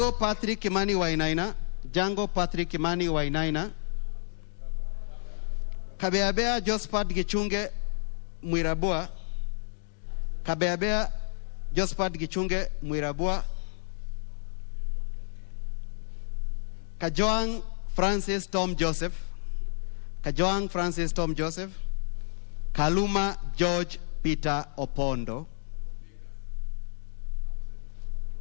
Patrick Kimani Wainaina, Kabeabea Jospat Gichunge Mwirabua, Kajoang Francis Tom Joseph, Kaluma George Peter Opondo,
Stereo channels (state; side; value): silent; right; digital silence